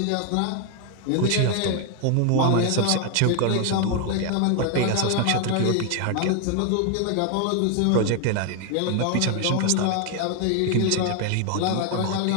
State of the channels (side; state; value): both; different; correlation 0.00